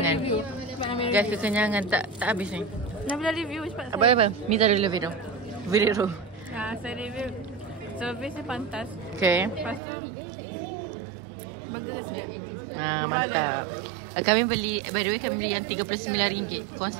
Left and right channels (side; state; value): left; drops out; at 9.8 s